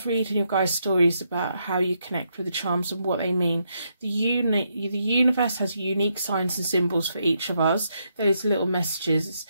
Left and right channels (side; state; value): both; inverted; correlation -0.79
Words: reading your guys' stories about how you connect with the charms and what they mean. The universe has unique signs and symbols for each of us. Those little messages. It's